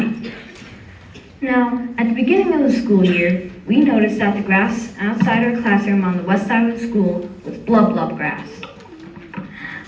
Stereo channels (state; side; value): identical; both; correlation 1.00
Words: Now, at the beginning of the school year, we noticed that the grass outside our classroom on the west side of the school was blub blub grass.